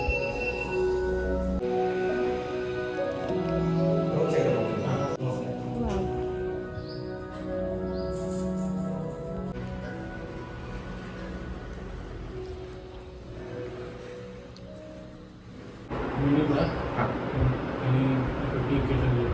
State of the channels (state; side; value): identical; both; correlation 1.00